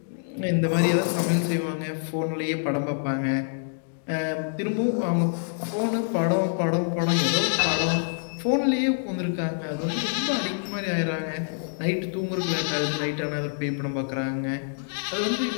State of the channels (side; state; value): right; silent; digital silence